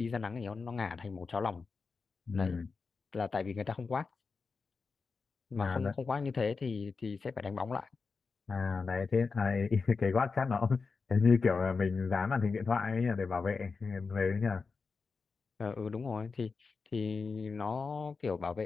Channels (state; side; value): quieter; right; 4.7 dB